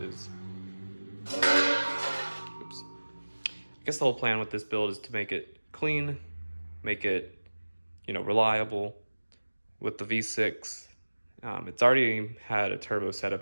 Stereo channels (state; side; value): inverted; both; correlation -1.00